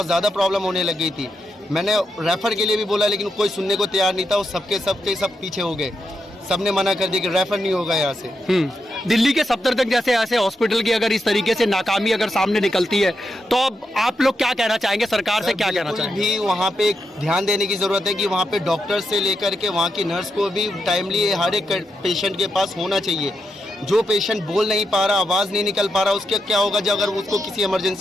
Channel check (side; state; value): both; normal; correlation 0.84